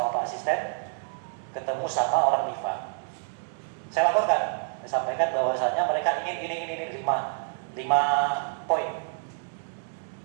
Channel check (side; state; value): left; silent; digital silence